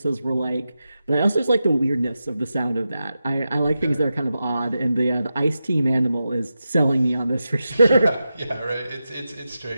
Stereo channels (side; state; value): both; inverted; correlation -0.90